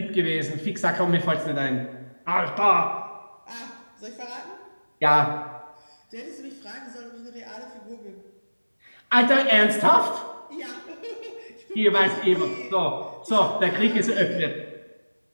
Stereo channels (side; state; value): both; inverted; correlation -1.00